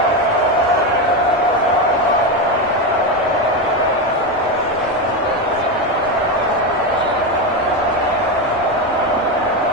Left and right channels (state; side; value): normal; both; correlation 0.13